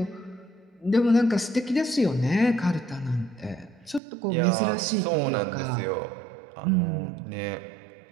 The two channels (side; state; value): left; drops out; at 4.0 s